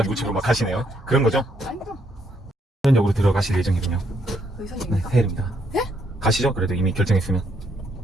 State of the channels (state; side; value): normal; both; correlation 0.73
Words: 우측으로 막 가시네요. 그런 거죠? 아닙니다. 현역으로 들어가실 예정이군요. 여기 네, 선입니까? 해일입니다. 네? 가시죠? 그래도 이미 결정했으면.